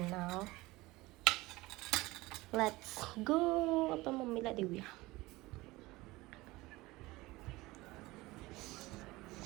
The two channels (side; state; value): left; quieter; 20.4 dB